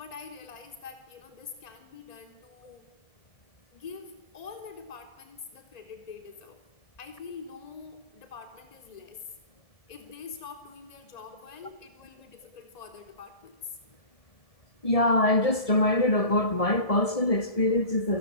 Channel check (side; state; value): right; late; 1.7 ms